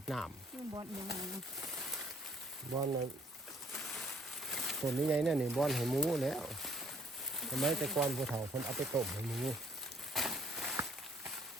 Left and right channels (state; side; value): normal; both; correlation 0.61